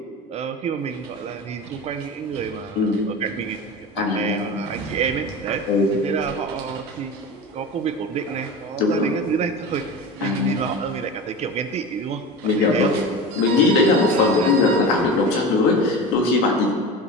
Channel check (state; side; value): normal; both; correlation 0.29